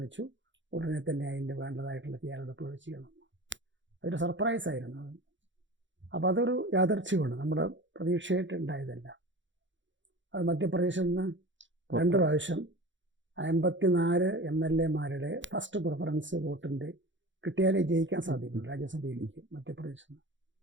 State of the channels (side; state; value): left; late; 0.54 ms